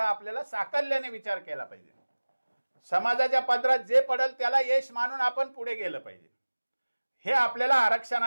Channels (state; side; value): inverted; both; correlation -1.00